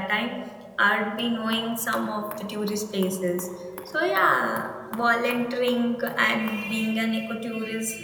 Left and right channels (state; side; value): identical; both; correlation 1.00